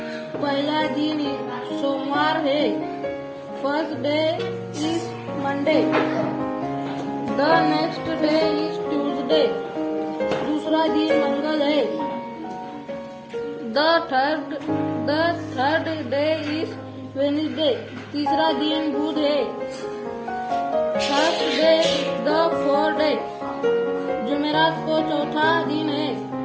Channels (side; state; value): both; identical; correlation 1.00